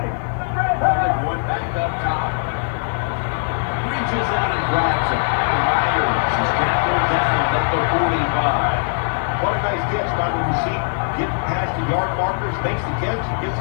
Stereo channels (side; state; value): right; silent; digital silence